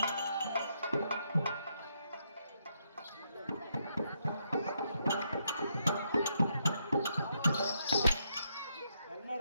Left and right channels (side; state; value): both; inverted; correlation -0.78